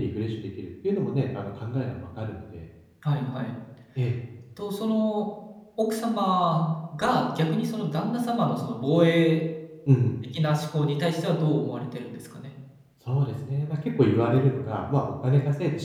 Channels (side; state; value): both; identical; correlation 1.00